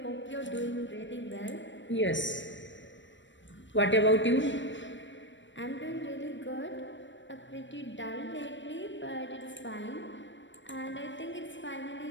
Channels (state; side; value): late; right; 0.54 ms